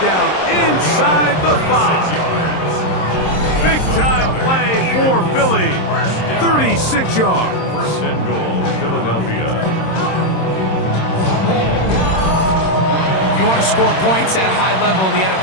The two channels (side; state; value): right; late; 26 ms